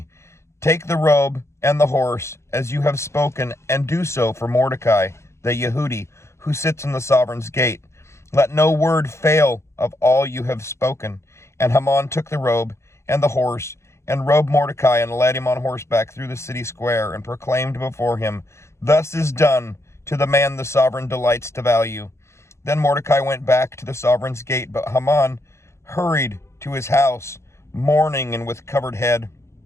take the robe and the horse, as you have spoken, and do so for Mordecai, the Yehudi, who sits in the sovereign's gate. Let no word fail of all you have spoken." And Haman took the robe and the horse, and robed Mordecai, and led him on horseback through the city square, and proclaimed before him, "Thus is done to the man the sovereign delights to value." Then Mordecai went back to the sovereign's gate, but Haman hurried to his house, mourning and with covered head.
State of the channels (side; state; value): right; late; 0.13 ms